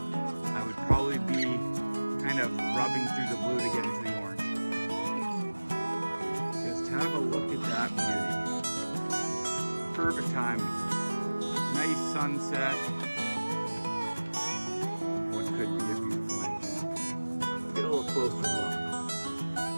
would probably be kind of rubbing through the blue to get into the orange. Just have a look at that beauty. Perfect timing. Nice sunset. What could be a beautiful engine. Get a little closer look.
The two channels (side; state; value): both; inverted; correlation -1.00